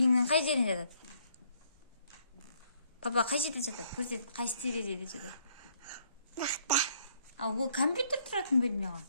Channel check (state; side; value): inverted; both; correlation -0.67